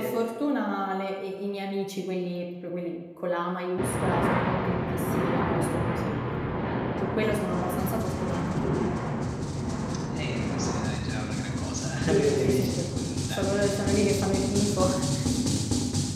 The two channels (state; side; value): identical; both; correlation 1.00